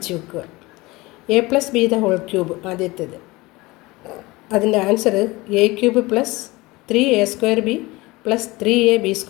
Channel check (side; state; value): right; quieter; 21.7 dB